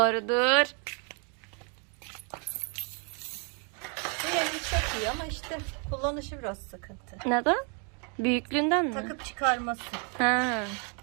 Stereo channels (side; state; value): left; quieter; 38.0 dB